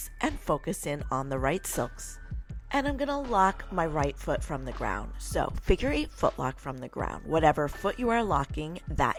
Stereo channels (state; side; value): identical; both; correlation 1.00